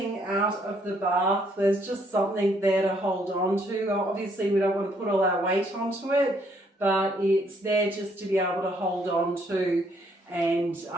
out of the bath. There's just something there to hold on to. Obviously we don't want to put all our weight onto it, but it's there just to be able to hold on to, and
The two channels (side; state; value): both; normal; correlation 0.68